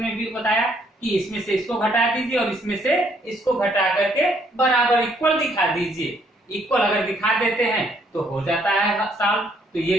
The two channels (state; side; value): normal; both; correlation 0.68